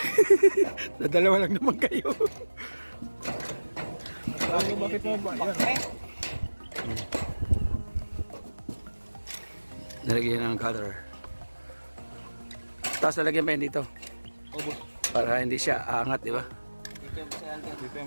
Nadalawa lang naman kayo. Ano bakit mo ba? Yan. Nalagyan ng color. Tapos nalagyan pa yun dito. Oh, boss. Para hindi siya aangat, di ba? Dito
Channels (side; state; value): both; inverted; correlation -1.00